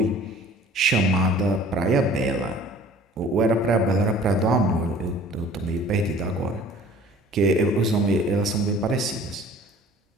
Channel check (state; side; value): normal; both; correlation 0.49